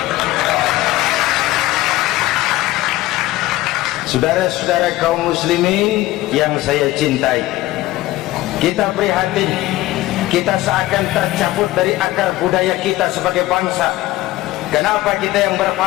Saudara-saudara kaum muslimin yang saya cintai, kita prihatin, kita seakan tercabut dari akar budaya kita sebagai bangsa. Kenapa kita yang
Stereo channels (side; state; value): right; quieter; 17.0 dB